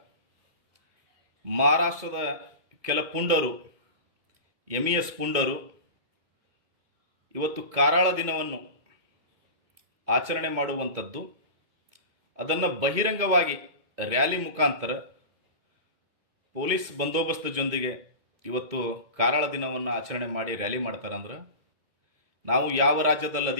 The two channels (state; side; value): late; left; 2.2 ms